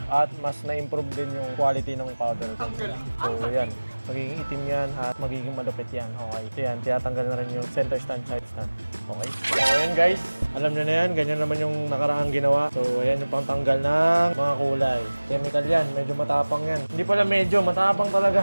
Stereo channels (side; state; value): both; inverted; correlation -1.00